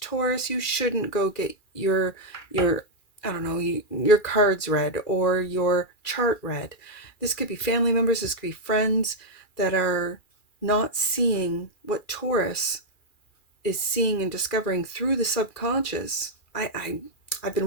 Taurus, you shouldn't go get your I don't know, your cards read or your chart read. This could be family members, this could be friends that are not seeing what Taurus is seeing and discovering through the subconscious. I've been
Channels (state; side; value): late; right; 2.4 ms